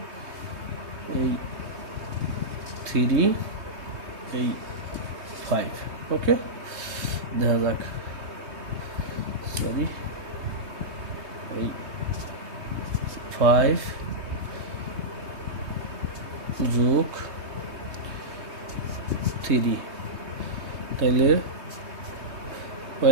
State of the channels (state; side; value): late; left; 3.2 ms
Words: এই 3 এই 5, ওকে। দেখা যাক, সরি, এই 5 যোগ 3, তাইলে